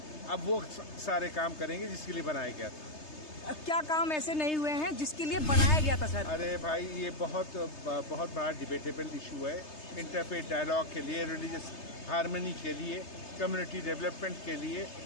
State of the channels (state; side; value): late; right; 3.3 ms